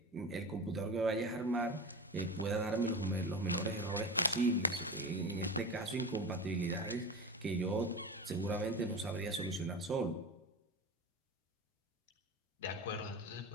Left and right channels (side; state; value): both; normal; correlation 0.27